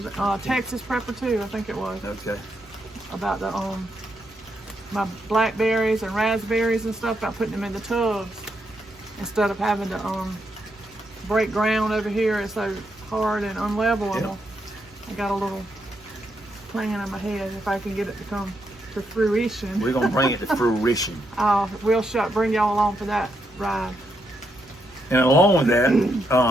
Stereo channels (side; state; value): both; normal; correlation 0.80